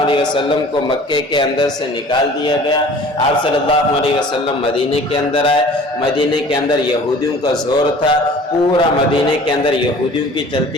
علیہ وسلم کو مکے کے اندر سے نکال دیا گیا، آپ صلی اللہ علیہ وسلم مدینے کے اندر آئے، مدینے کے اندر یہودیوں کا زور تھا، پورا مدینے کے اندر یہودیوں کی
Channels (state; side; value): normal; both; correlation 0.47